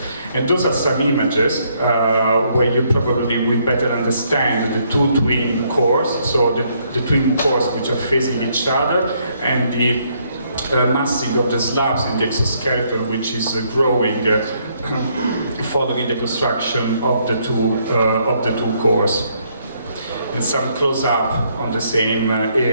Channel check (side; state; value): both; inverted; correlation -0.71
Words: And those are some images where you probably will better understand the two twin cores, so the twin cores which are facing each other, and the massing of the slabs in the exoskeleton, which is growing following the construction of the two cores. And some close-up on the same